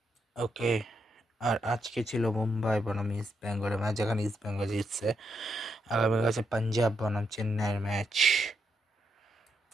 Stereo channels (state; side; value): normal; both; correlation 0.81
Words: ওকে। আর আজকে ছিল মুম্বাই বনাম ইস্ট বেঙ্গলের ম্যাচ, যেখানে ইস্ট বেঙ্গল জিতছে। আগামীকাল আছে পাঞ্জাব বনাম চেন্নাইয়ের ম্যাচ।